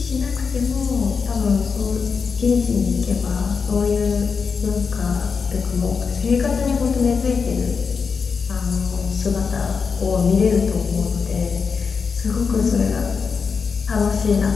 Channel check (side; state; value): right; quieter; 5.5 dB